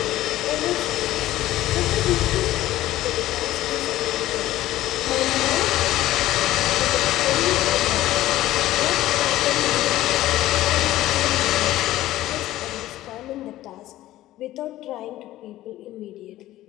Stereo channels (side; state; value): right; quieter; 15.1 dB